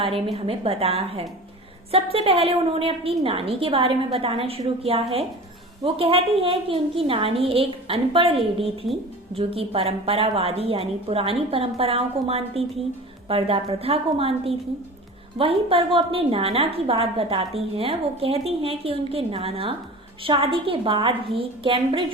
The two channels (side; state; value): both; normal; correlation 0.37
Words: में हमें बताया है। सबसे पहले उन्होंने अपनी नानी के बारे में बताना शुरू किया है। वो कहती है कि उनकी नानी एक अनपढ़ लेडी थी जो कि परंपरावादी यानी पुरानी परंपराओं को मानती थी, पर्दा प्रथा को मानती थी। वहीं पर वो अपने नाना की बात बताती हैं। वो कहती हैं कि उनके नाना शादी के बाद ही